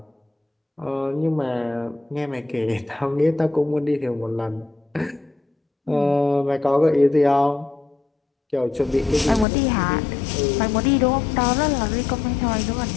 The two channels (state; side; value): drops out; right; at 9.5 s